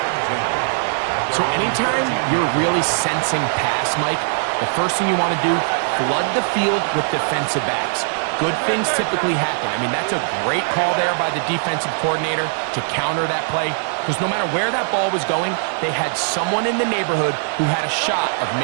So anytime you're really sensing pass, Mike, the first thing you want to do, flood the field with defensive backs. Good things typically happen. I mean, that's a great call there by the defensive coordinator to counter that play, because no matter where that ball was going, they had someone in the neighborhood who had a shot of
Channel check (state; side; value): silent; left; digital silence